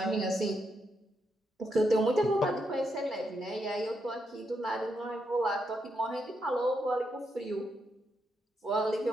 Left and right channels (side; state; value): both; normal; correlation 0.81